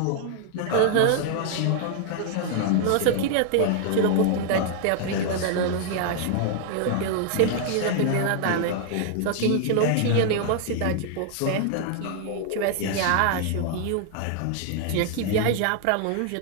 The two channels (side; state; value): both; different; correlation 0.00